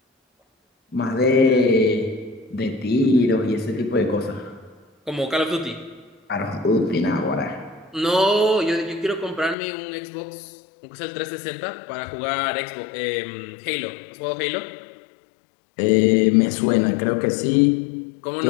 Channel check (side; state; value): right; drops out; at 9.6 s